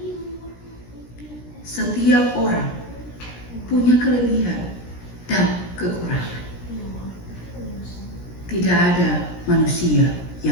Setiap orang punya kelebihan dan kekurangan. Tidak ada manusia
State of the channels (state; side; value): late; right; 17 ms